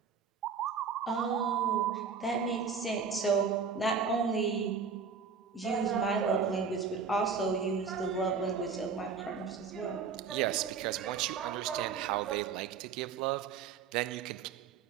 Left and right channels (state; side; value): quieter; left; 5.9 dB